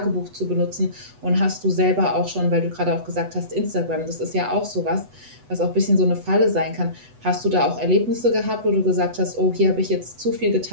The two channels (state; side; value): late; left; 8.1 ms